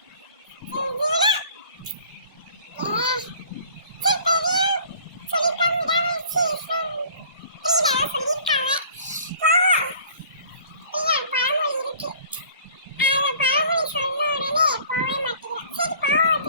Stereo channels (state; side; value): inverted; both; correlation -0.50